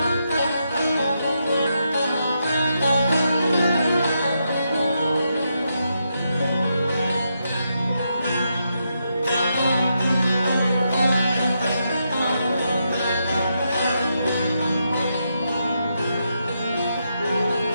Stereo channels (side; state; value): both; inverted; correlation -0.82